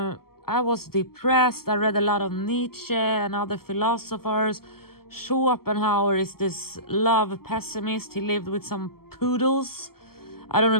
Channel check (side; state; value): right; late; 0.94 ms